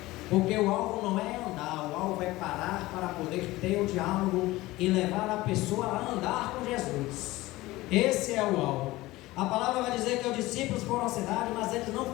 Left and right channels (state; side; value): quieter; right; 18.7 dB